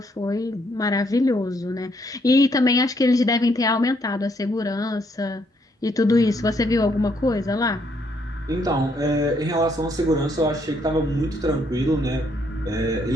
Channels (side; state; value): both; normal; correlation 0.71